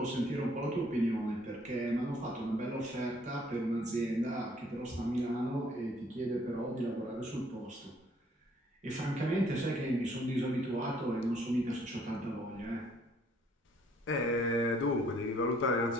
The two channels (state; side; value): normal; both; correlation 0.63